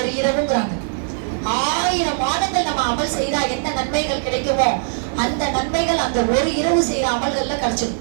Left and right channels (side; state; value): left; silent; digital silence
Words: இரவுங்கிறாங்க. 1000 மாதங்கள் நம்ம அமல் செய்தா என்ன நன்மைகள் கிடைக்குமோ அந்த நன்மைகள் அந்த ஒரு இரவு செய்யற அமல்கள்ல கிடைச்சிடும்.